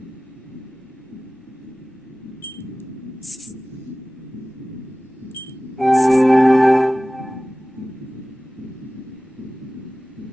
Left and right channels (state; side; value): normal; both; correlation 0.97